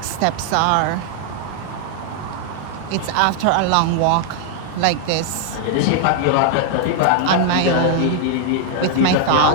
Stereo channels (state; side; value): different; both; correlation 0.00